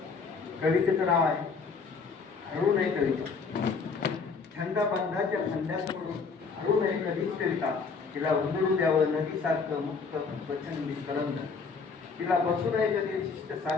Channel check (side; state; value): right; quieter; 4.9 dB